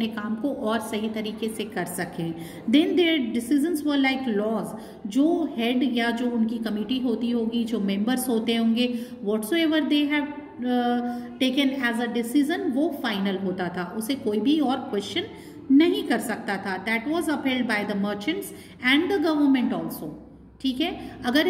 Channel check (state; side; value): identical; both; correlation 1.00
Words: काम को और सही तरीके से कर सकें। Then there decisions were like laws, जो हेड या जो उनकी कमिटी होती होगी, जो मेंबर्स होते होंगे, whatsoever they have taken as a decision, वो फाइनल होता था, उसे कोई भी और क्वेश्चन नहीं कर सकता था। That was upheld by the merchants and the government also, ठीक है। अगर